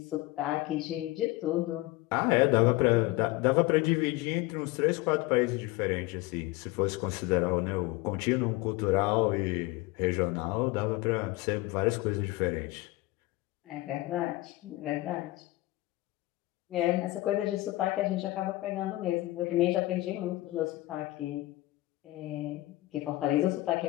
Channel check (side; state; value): right; quieter; 19.5 dB